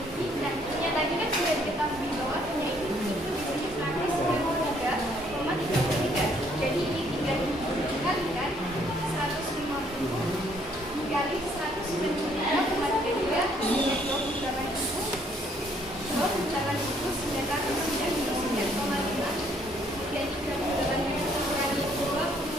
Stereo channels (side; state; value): both; normal; correlation 0.66